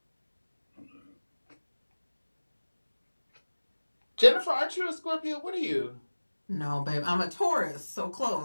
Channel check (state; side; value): inverted; both; correlation -1.00